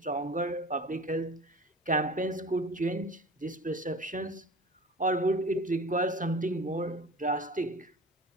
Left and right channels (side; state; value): both; normal; correlation 0.38